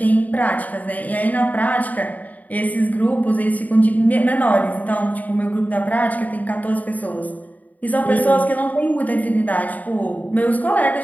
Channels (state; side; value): late; right; 0.076 ms